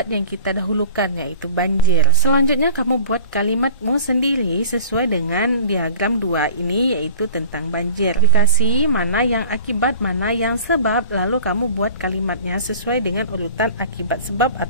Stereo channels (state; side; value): inverted; both; correlation -0.42